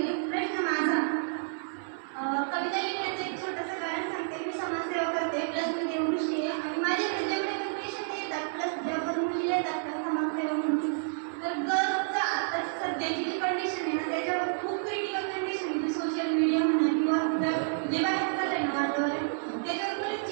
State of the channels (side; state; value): left; silent; 58 dB below the other